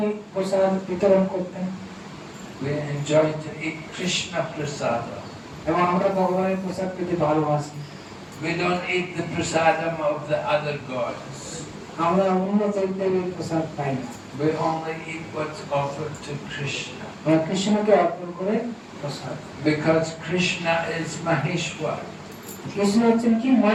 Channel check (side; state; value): both; identical; correlation 1.00